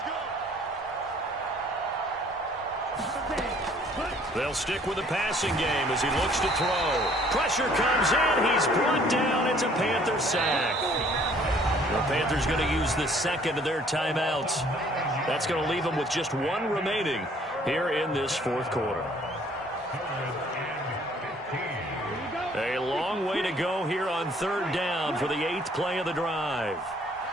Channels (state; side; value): normal; both; correlation 0.59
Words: They'll stick with the passing game as he looks to throw. Pressure comes in. He's brought down. It's a Panther sack. The Panthers going to use the 2nd of their timeouts. That's going to leave them with just 1 remaining here in this 4th quarter. A long way to go here on 3rd down for the 8th play of the drive.